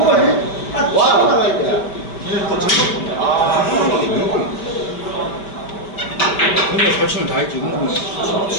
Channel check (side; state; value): right; late; 5.2 ms